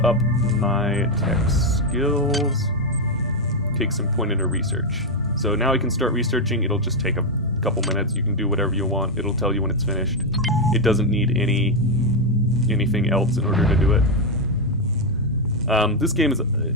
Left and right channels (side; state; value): both; normal; correlation 0.03